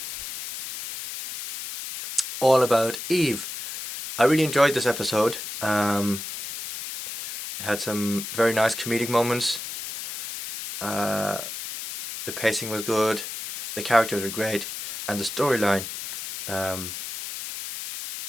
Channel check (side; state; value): left; noise; hiss, 7 dB below the sound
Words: All About Eve. I really enjoyed this episode. It had some very nice comedic moments. The pacing was good, the characters were great, and the storyline